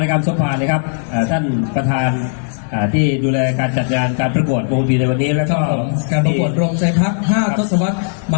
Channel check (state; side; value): silent; right; digital silence